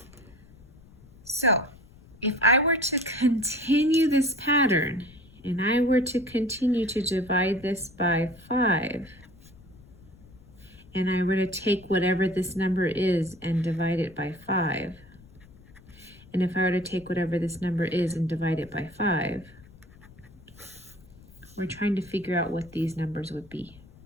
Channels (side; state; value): left; noise; rumble, 23 dB below the sound